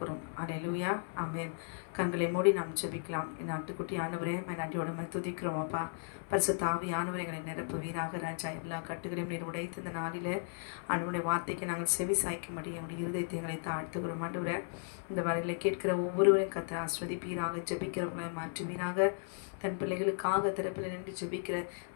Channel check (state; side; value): silent; right; 54 dB below the other